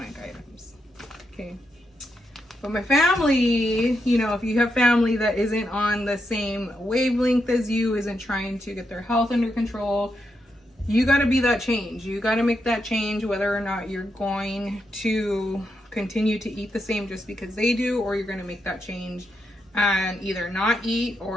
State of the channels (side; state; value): both; normal; correlation 0.83